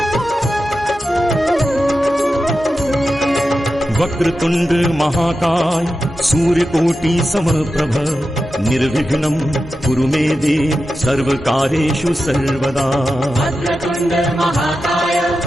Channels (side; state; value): both; normal; correlation 0.91